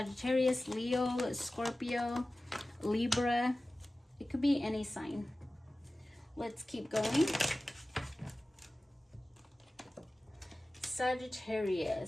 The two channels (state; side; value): normal; both; correlation 0.96